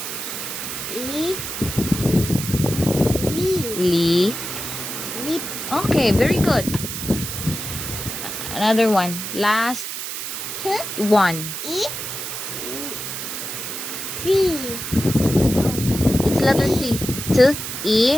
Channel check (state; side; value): noise; right; hiss, 6 dB below the sound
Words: Lee. Lip. Okay, very good. Another one. Last one. C. It's letter T. T.